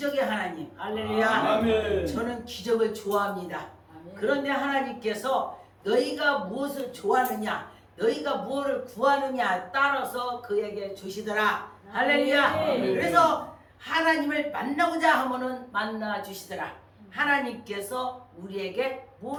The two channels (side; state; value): both; identical; correlation 1.00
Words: 하나님. 할렐루야. 아멘. 저는 기적을 좋아합니다. 그런데 하나님께서 너희가 무엇을 좋아하느냐, 너희가 무엇을 구하느냐 따라서 그에게 주시더라. 할렐루야. 아멘. 그래서 하나님을 만나고자 하면은 만나 주시더라. 하나님께서 우리에게